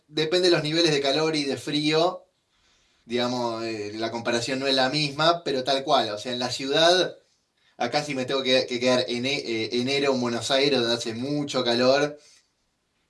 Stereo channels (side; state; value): both; identical; correlation 1.00